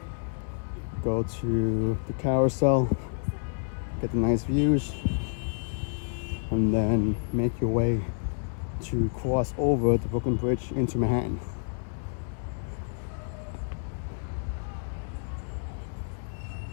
go to the carousel, get the nice views, and then make your way to cross over the Brooklyn Bridge into Manhattan.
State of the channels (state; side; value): silent; right; 59 dB below the other